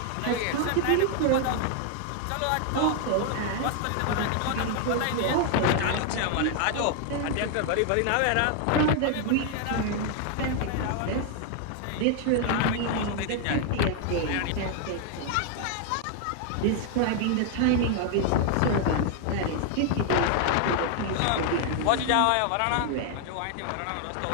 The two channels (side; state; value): both; different; correlation 0.00